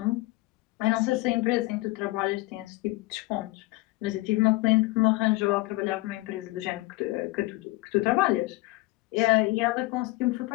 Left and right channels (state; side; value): quieter; right; 20.7 dB